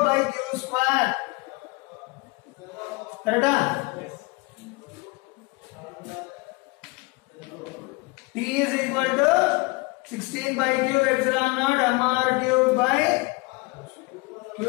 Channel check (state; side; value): quieter; right; 26.1 dB